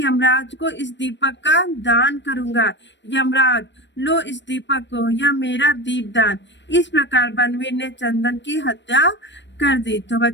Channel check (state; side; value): late; right; 0.53 ms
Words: को इस दीपक का दान करूंगा। यमराज लो इस दीपक को, यह मेरा दीपदान। इस प्रकार बनवीर ने चंदन की हत्या कर दी। तो